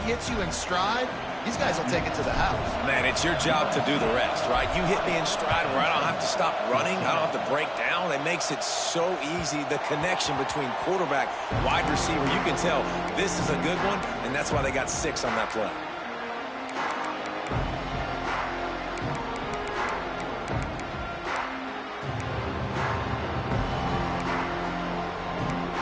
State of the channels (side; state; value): both; identical; correlation 1.00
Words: he hits you in stride, these guys will take it to the house. Man, it's your job to do the rest, right? You hit me in stride where I don't have to stop running. I don't have to break down. It makes it so easy. The connection between quarterback, wide receiver, you can tell this is a good one, and that's why they got 6 on that play.